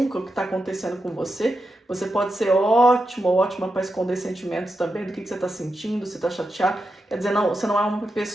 o que está acontecendo com você. Você pode ser ótimo ou ótima para esconder sentimentos também, do que você está sentindo, se está chateado. Quer dizer, não, você não é uma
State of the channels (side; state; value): both; normal; correlation 0.88